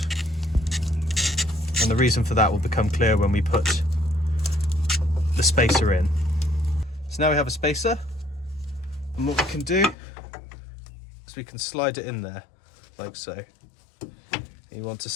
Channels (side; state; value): right; drops out; at 10.0 s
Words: and the reason for that will become clear when we put the spacer in. So now we have a spacer, and what we can do is we can slide it in there like so. You want to